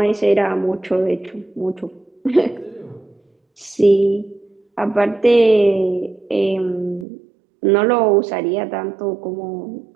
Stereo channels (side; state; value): left; drops out; at 7.1 s